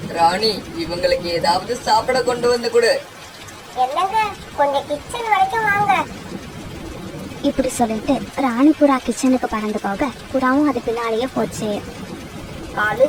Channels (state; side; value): identical; both; correlation 1.00